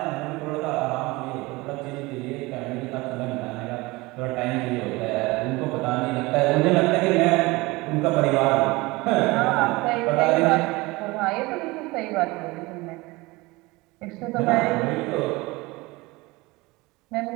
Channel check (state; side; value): quieter; left; 22.4 dB